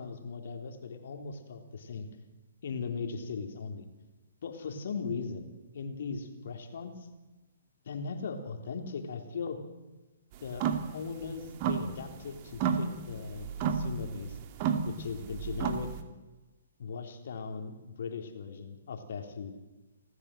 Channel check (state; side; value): inverted; both; correlation -0.49